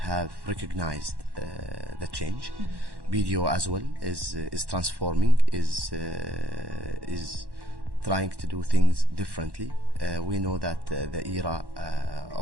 recognized the change. BDO as well is transforming, is trying to do things differently. We know that the era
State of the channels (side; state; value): left; late; 1.1 ms